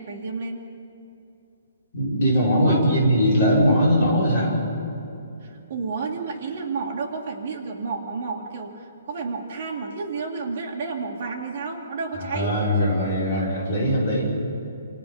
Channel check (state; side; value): inverted; both; correlation -0.61